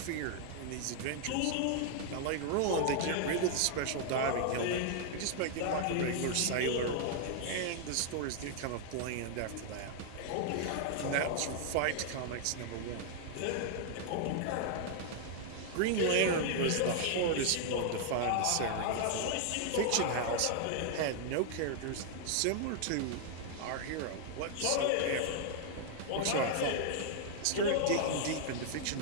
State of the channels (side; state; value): both; different; correlation 0.00